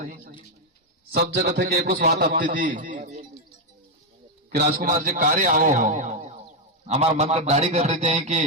सब जगह थे कि एक बात आती थी कि राजकुमार जी कार्य आओ हो, हमार मन का दाढ़ी कर रहे थे कि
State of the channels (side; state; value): both; normal; correlation 0.02